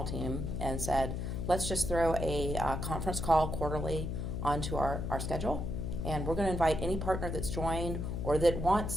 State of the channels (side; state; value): left; noise; hum, 3 dB below the sound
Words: team and said, let's just throw a conference call quarterly onto our schedule, and we're going to invite any partner that's joined or that